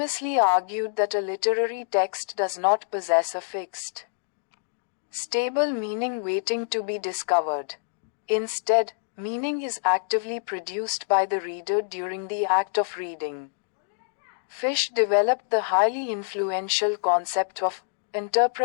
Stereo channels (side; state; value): right; silent; digital silence